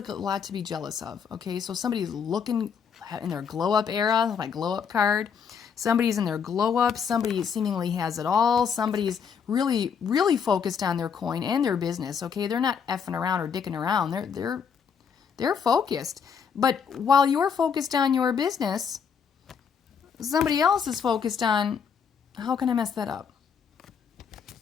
a lot to be jealous of, okay? So somebody's looking in their glow up era, my glow up card. Somebody's in their glow up. Somebody seemingly has it all. Somebody's really, really focused on their coin and their business, okay? They're not effing around or dicking around. They're focused. But while you're focused on your business, somebody else is focused on, how can I mess that up?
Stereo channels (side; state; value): right; quieter; 6.8 dB